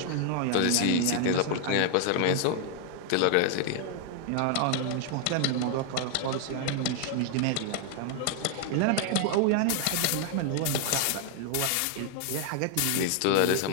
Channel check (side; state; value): both; different; correlation 0.00